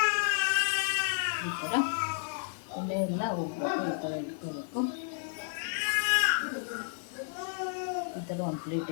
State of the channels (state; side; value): silent; right; 56 dB below the other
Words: ಈ ಥರ ಎಣ್ಣೆ ಎಲ್ಲ ಹೋಗ್ಬೇಕು, ಈ ಥರ ಇಟ್ಕೋಬೇಕು. ಈ ಥರ ಒಂದು